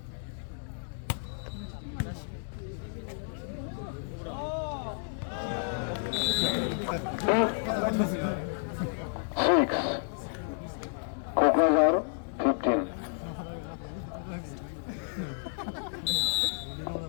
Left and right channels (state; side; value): silent; right; digital silence